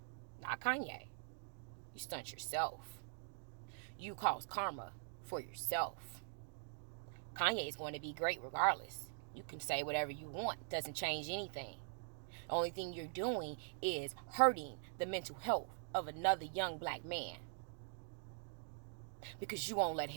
Not Kanye. You stunt yourself. You cause karma for yourself. Kanye is going to be great regardless. You can say whatever you want. It doesn't change anything. The only thing you're doing is hurting the mental health of another young black man, because you won't let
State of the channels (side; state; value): left; silent; digital silence